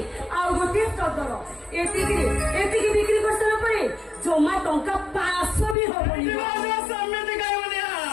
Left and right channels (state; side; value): drops out; right; at 5.8 s